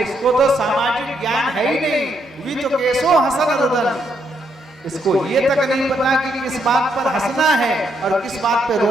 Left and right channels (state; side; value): normal; both; correlation 0.76